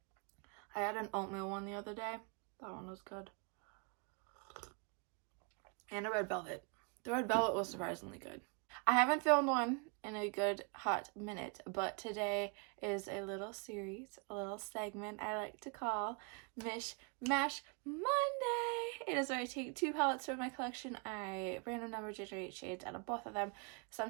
I had an oatmeal one the other day. That one was good. And a red velvet. The red velvet was surprisingly good. I haven't filmed one in a good hot minute, but today is a little series, a little segment I like to call Mish Mash Monday. It is where I take two palettes from my collection, I random number generate shades out of both of them.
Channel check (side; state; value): left; quieter; 35.5 dB